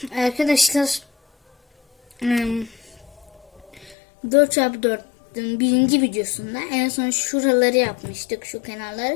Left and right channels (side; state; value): right; drops out; at 4.0 s